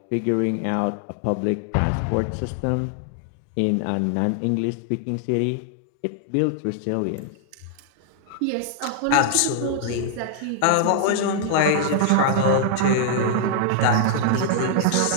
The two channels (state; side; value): different; both; correlation 0.00